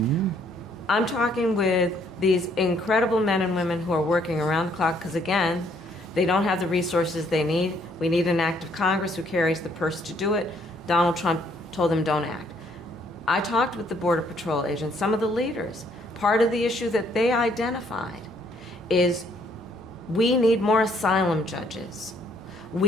I'm talking with these incredible men and women who are working around the clock, because again, they don't have the resources they need. We need an act of Congress who carries the purse to do it. Donald Trump told them don't act. I talked with the Border Patrol agents, some of the leaders. Part of the issue that they identified is we need more asylum judges.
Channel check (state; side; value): normal; both; correlation 0.66